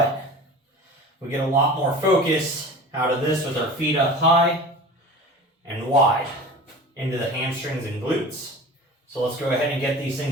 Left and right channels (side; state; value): both; normal; correlation 0.37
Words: we get a lot more focus out of this with our feet up high and wide into the hamstrings and glutes. So let's go ahead and get these